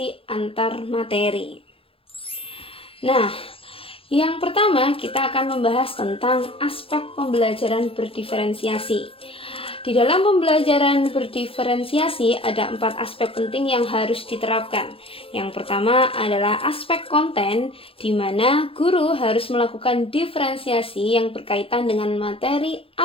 antar materi. Nah, yang pertama kita akan membahas tentang aspek pembelajaran berdiferensiasi. Di dalam pembelajaran berdiferensiasi ada 4 aspek penting yang harus diterapkan. Yang pertama adalah aspek konten, di mana guru harus melakukan diferensiasi yang berkaitan dengan materi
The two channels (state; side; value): late; right; 0.27 ms